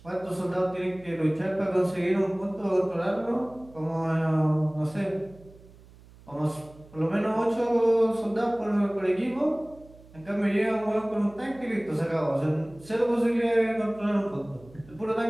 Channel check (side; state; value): right; noise; hum, 23 dB below the sound